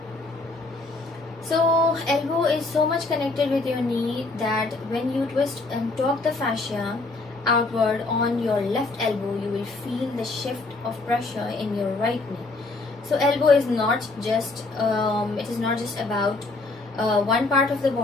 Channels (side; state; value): right; quieter; 3.3 dB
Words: So elbow is so much connected with your knee that when you twist and torque the fascia outward on your left elbow, you will feel the shift of pressure in your right knee. So elbow is not just about one part of the